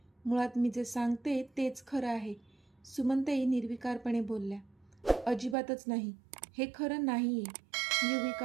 मुळात मी जे सांगते तेच खरं आहे. सुमनताई निर्विकारपणे बोलल्या. अजिबातच नाही, हे खरं नाही आहे,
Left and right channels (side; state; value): left; drops out; at 5.6 s